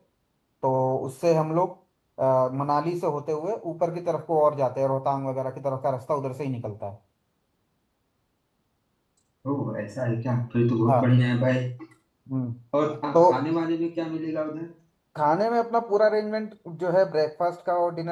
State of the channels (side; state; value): both; identical; correlation 1.00